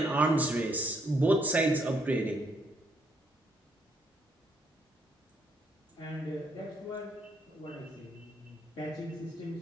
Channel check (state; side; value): normal; both; correlation 0.73